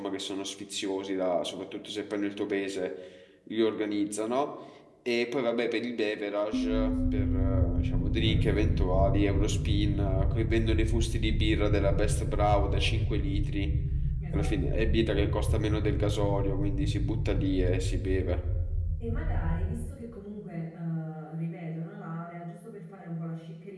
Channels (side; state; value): both; identical; correlation 1.00